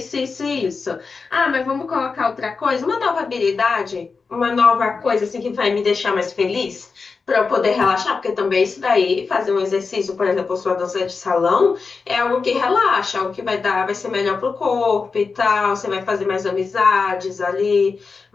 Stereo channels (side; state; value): right; quieter; 4.7 dB